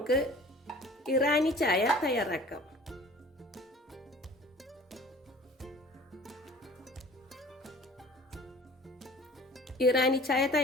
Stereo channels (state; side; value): normal; both; correlation 0.47